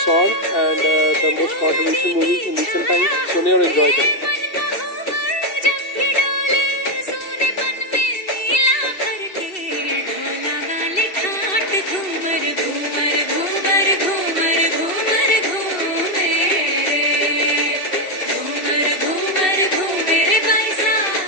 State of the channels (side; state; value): right; late; 2.7 ms